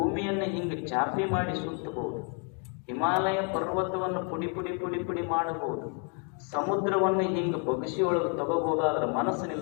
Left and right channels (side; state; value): right; quieter; 39.6 dB